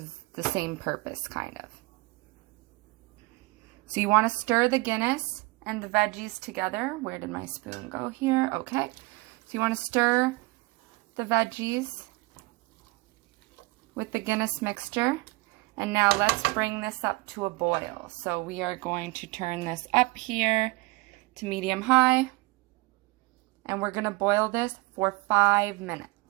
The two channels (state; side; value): quieter; left; 23.8 dB